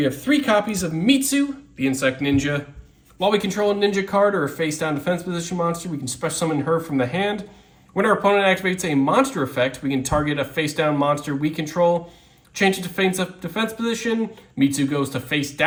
have 3 copies of Mitsu, the Insect Ninja. While we control a ninja card or a face-down defense position monster, we can special summon her from the hand. When our opponent activates a monster effect, we can target a face-down monster we control, change it to face-up defense position. Mitsu goes to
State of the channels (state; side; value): identical; both; correlation 1.00